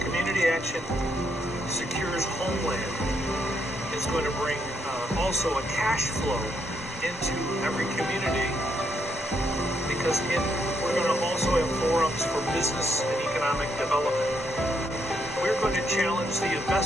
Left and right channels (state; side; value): normal; both; correlation 0.76